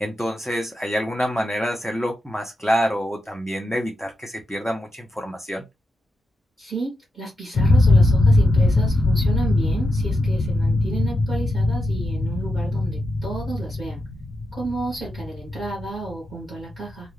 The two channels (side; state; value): both; normal; correlation 0.87